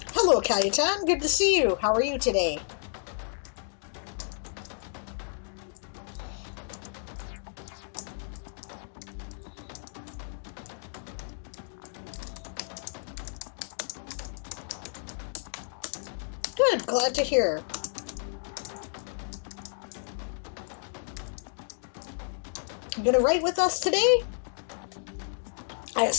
Hello, Cayetan. Good to see you. How are you today? Good. Glad to hear. You gonna write with us today? I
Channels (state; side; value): silent; right; digital silence